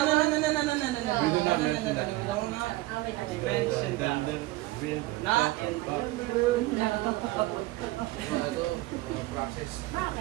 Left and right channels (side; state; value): left; quieter; 19.0 dB